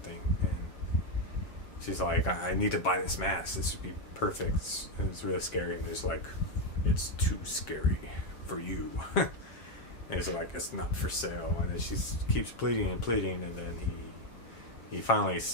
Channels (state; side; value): late; right; 7.4 ms